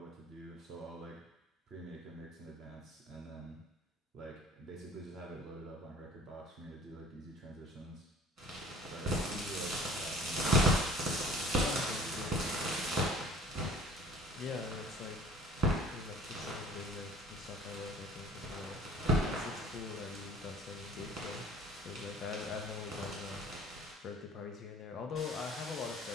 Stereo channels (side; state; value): both; normal; correlation 0.49